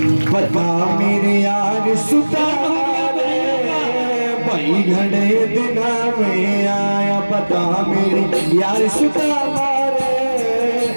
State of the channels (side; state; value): both; inverted; correlation -1.00